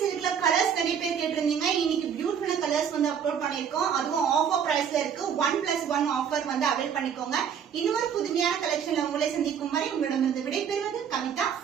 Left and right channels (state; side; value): quieter; left; 7.8 dB